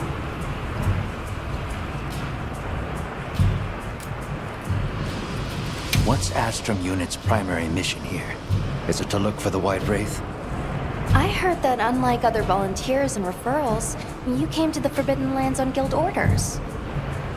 What's Astrum Unit's primary mission here? Is it to look for the White Wraith? I heard that unlike other volunteers and referrals, you came to the Forbidden Lands on guild orders.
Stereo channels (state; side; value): identical; both; correlation 1.00